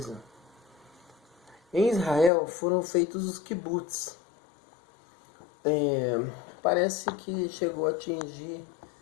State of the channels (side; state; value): right; drops out; at 2.3 s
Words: em Israel foram feitos os kibbutz. Parece que chegou a atingir